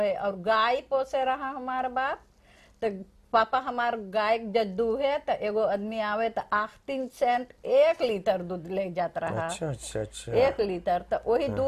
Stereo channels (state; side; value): identical; both; correlation 1.00